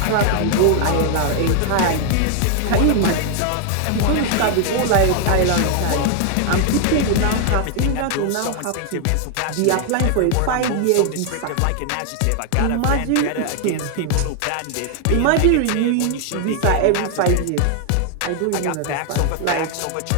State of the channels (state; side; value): different; both; correlation 0.00